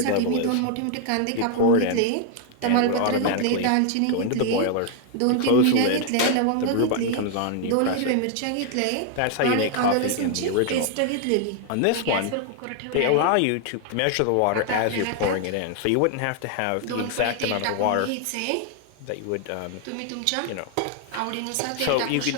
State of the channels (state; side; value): different; both; correlation 0.00